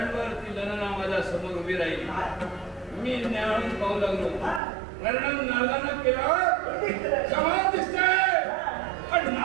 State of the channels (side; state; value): left; drops out; at 4.6 s